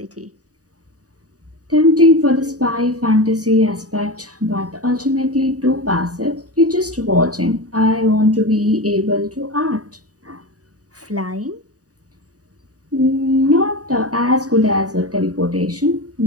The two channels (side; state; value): left; late; 0.67 ms